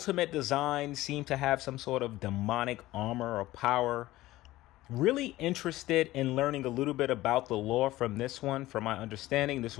designs seem to have some sort of demonic armor or power. Really interested in learning a little bit about the lore from this one. From my understanding, this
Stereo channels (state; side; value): quieter; right; 16.9 dB